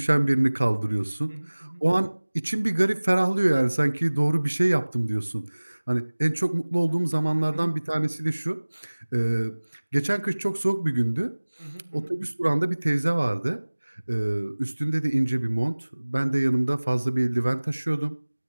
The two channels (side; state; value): both; inverted; correlation -1.00